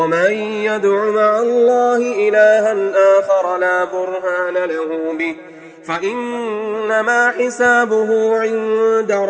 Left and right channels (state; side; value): identical; both; correlation 1.00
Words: يدع مع الله إلها آخر لا برهان له به فإنما حسابه عند